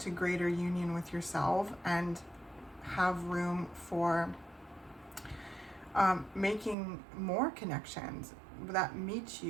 greater union with yourself and have room for making more connections that meet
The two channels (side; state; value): left; drops out; at 6.8 s